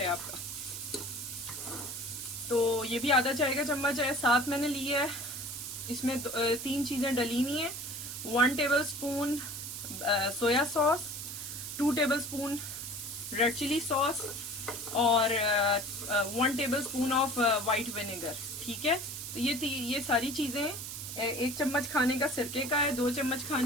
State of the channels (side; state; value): right; noise; hiss, 8 dB below the sound